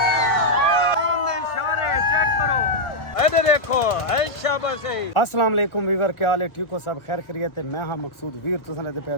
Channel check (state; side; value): late; right; 1.6 ms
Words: देखो अस्सलाम वालेकुम वीवर, क्या हाल है? ठीक हो सब? खैर खैरियत है। मैं हाँ मकसूद वीर, तुसां दे पे